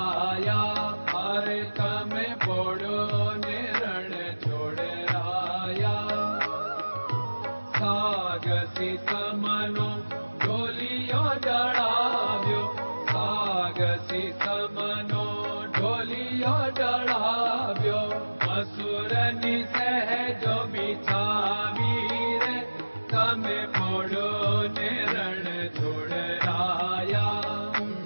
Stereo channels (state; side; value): inverted; both; correlation -1.00